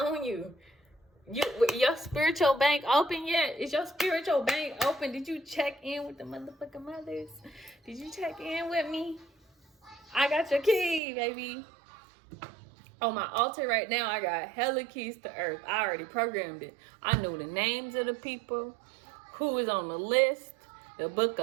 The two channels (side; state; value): left; drops out; at 11.0 s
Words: you. Your spiritual bank open yet? Is your spiritual bank open? Did you check in with the motherfucking mothers? Did you check in with me? I got your key, baby. On my altar right now, I got hella keys to earth. I already programmed it. I know the names of the people, who is on the list, the book